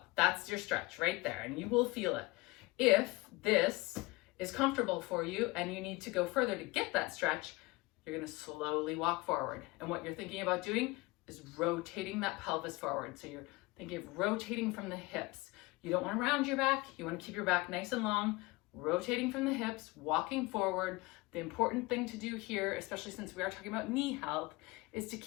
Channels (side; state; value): right; quieter; 23.1 dB